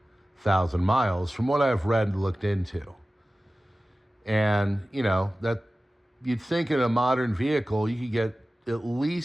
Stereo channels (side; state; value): both; normal; correlation 0.96